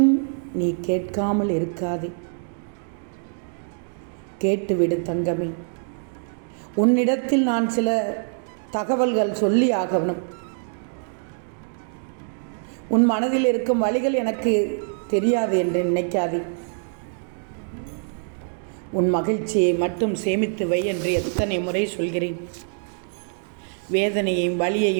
நீ கேட்காமல் இருக்காதே. கேட்டுவிடு தங்கமே. உன்னிடத்தில் நான் சில தகவல்கள் சொல்லி ஆகணும். உன் மனதில் இருக்கும் வழிகள் எனக்கு தெரியாது என்று நினைக்காதே. உன் மகிழ்ச்சியை மட்டும் சேமித்து வை என்று எத்தனை முறை சொல்கிறேன். வேதனையையும்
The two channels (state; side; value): silent; left; 62 dB below the other